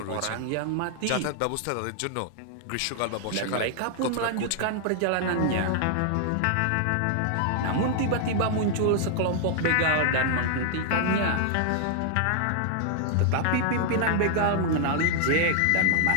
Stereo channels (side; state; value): both; different; correlation 0.00